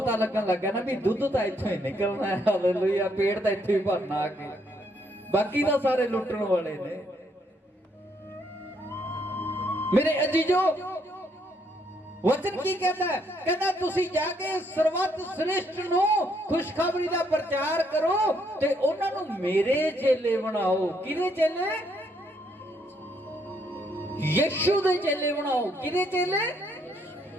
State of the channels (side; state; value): both; normal; correlation 0.72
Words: ਲੱਗਣ ਲੱਗਾ ਨਾ ਵੀ ਦੁੱਧ ਤਾਂ ਇੱਥੋਂ ਹੀ ਨਿਕਲਣਾ ਹੈ। ਹਾਲੇਲੂਇਆ। ਪੇਟ ਤਾਂ ਇੱਥੇ ਹੀ ਭਰਨਾ ਆ ਕੇ, ਬਾਕੀ ਤਾਂ ਸਾਰੇ ਲੁੱਟਣ ਵਾਲੇ ਨੇ। ਮੇਰੇ ਅਜੀਜ਼ੋ, ਵਚਨ ਕੀ ਕਹਿੰਦਾ ਹੈ? ਕਹਿੰਦਾ ਤੁਸੀਂ ਜਾ ਕੇ ਸਰਵਤ ਸ੍ਰਿਸ਼ਟ ਨੂੰ ਖੁਸ਼ਖਬਰੀ ਦਾ ਪ੍ਰਚਾਰ ਕਰੋ ਤੇ ਉਹਨਾਂ ਨੂੰ ਮੇਰੇ ਚੇਲੇ ਬਣਾਓ। ਕਿਹਦੇ ਚੇਲੇ? ਯਿਸੂ ਦੇ ਚੇਲੇ ਬਣਾਓ। ਕਿਹਦੇ ਚੇਲੇ?